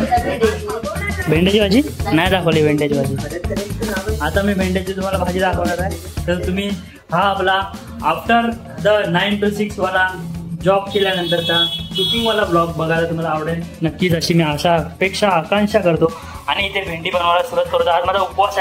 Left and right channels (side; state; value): both; identical; correlation 1.00